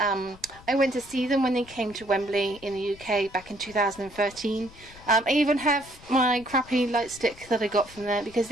went to see them when they came to Wembley in the UK back in 2013. I even have my crappy light stick that I got from there because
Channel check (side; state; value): left; noise; rumble, 21 dB below the sound